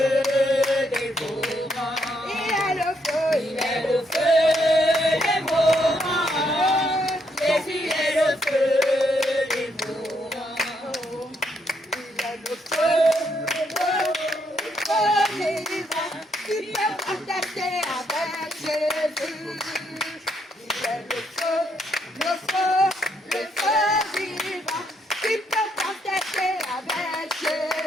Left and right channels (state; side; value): normal; both; correlation 0.75